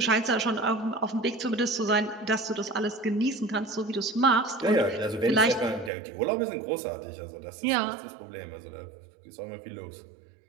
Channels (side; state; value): left; drops out; at 5.9 s